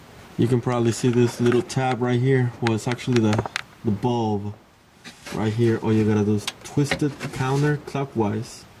You can probably see this little tab right here. Well, it's actually the bulb right here. All you gotta do is twist it counterclockwise,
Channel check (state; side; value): identical; both; correlation 1.00